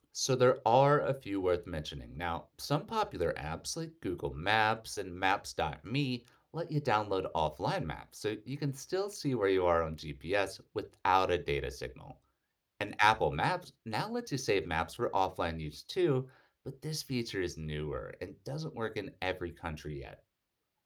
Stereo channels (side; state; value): both; identical; correlation 1.00